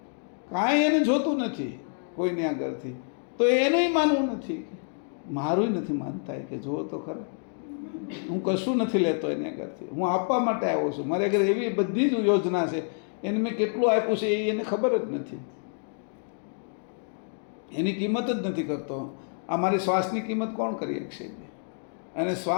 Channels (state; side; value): silent; right; 59 dB below the other